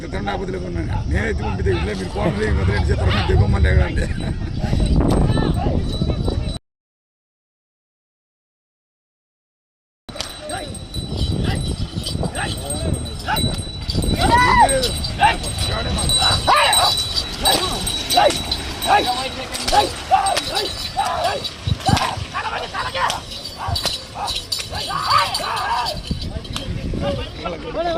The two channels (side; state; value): both; identical; correlation 1.00